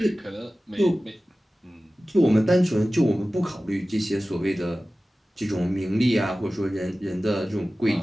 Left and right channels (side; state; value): both; normal; correlation 0.96